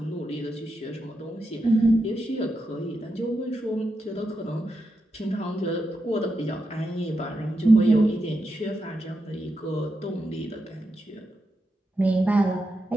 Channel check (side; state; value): both; normal; correlation 0.86